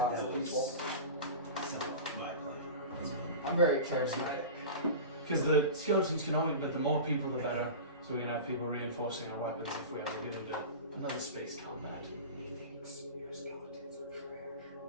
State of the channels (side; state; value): both; inverted; correlation -0.30